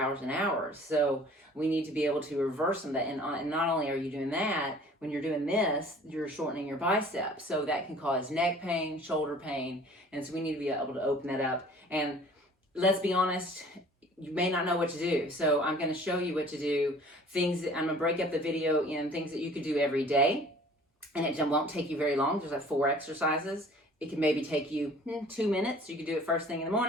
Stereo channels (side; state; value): both; normal; correlation 0.50